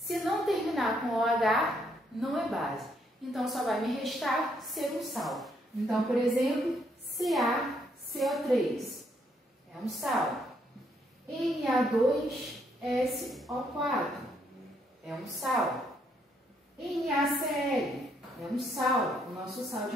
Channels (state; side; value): normal; both; correlation 0.72